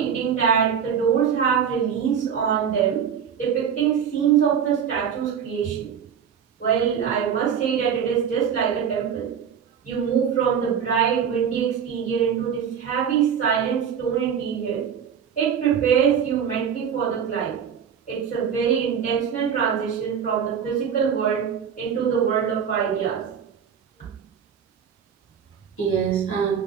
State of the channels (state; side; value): quieter; left; 7.8 dB